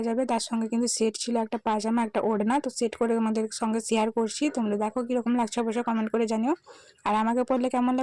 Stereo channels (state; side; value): identical; both; correlation 1.00